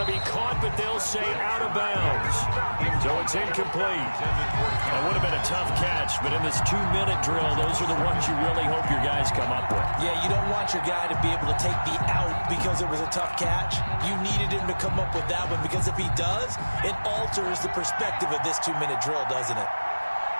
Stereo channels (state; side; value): inverted; both; correlation -1.00